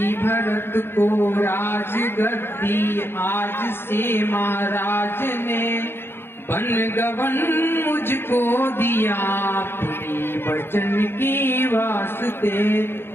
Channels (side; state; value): right; late; 0.11 ms